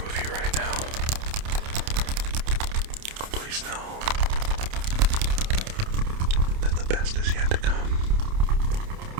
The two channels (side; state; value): left; late; 28 ms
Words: of you right now, please know that the best is yet to come.